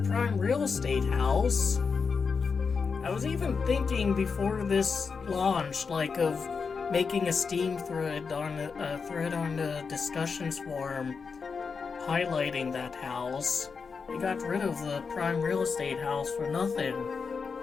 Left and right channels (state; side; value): quieter; right; 5.3 dB